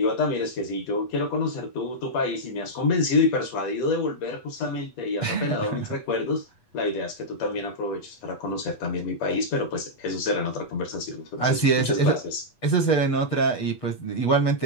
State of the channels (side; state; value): right; late; 8.3 ms